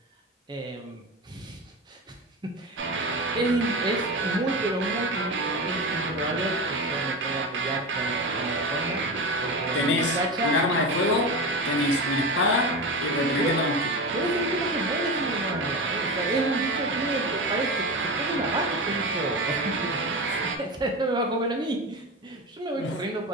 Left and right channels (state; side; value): normal; both; correlation 0.23